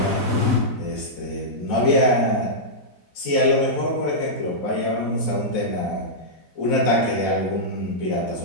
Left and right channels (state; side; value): late; right; 4.0 ms